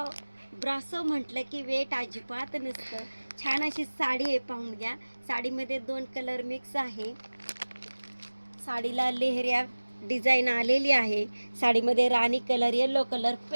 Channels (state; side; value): inverted; both; correlation -1.00